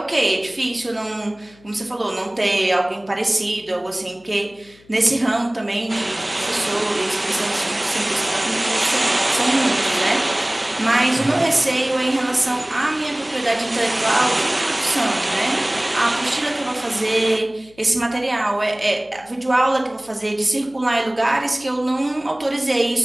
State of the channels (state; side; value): noise; left; hum, 28 dB below the sound